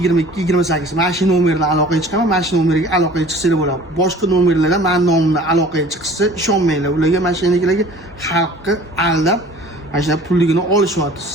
Mana shu nomerdan aloqaga chiqaman, mana shu nomerga aloqaga chiqsanglar bo'ladi. Boshqa nomerlardan men nomimdan aloqaga chiqsa ishonmanglar. Ularga mashinalarga xalqni aldab mana shu pulligini olishyapti.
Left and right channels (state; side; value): normal; both; correlation 0.47